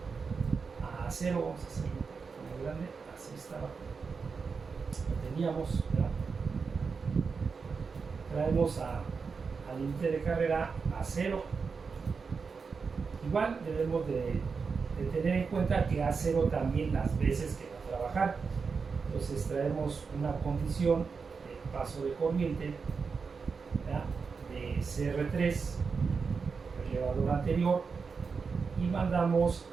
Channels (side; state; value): left; quieter; 5.2 dB